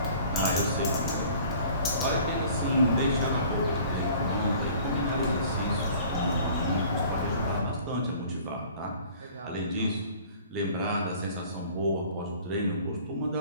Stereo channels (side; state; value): both; inverted; correlation -0.49